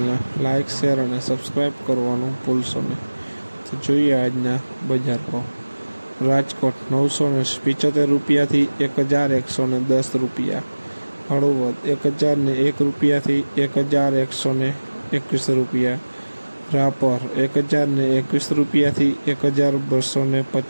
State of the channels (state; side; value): inverted; both; correlation -1.00